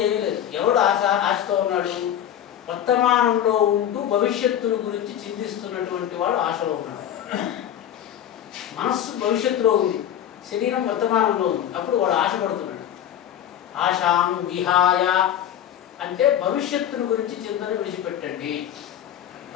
ఏమీ లేదు. ఎవడు ఆశతో ఉన్నాడు? వర్తమానంలో ఉంటూ భవిష్యత్తుల గురించి చింతిస్తున్నటువంటి వాడు ఆశలో ఉన్నాడు. మనస్సు భవిష్యత్తులో ఉంది, శరీరం వర్తమానంలో ఉంది, అప్పుడు వాడు ఆశపడుతున్నాడు. ఆశాం విహాయ అంటే భవిష్యత్తుల గురించి చింతన విడిచిపెట్టండి.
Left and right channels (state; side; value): quieter; right; 10.5 dB